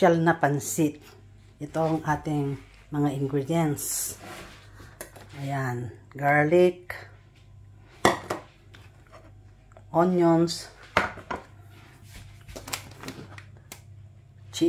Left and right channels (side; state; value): both; identical; correlation 1.00